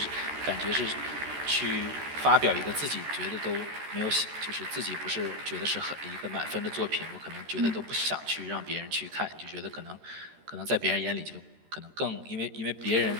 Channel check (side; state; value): left; late; 13 ms